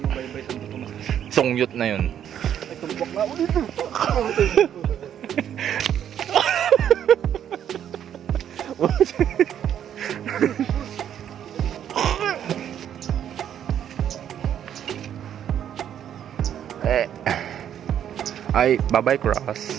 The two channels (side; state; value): left; quieter; 9.7 dB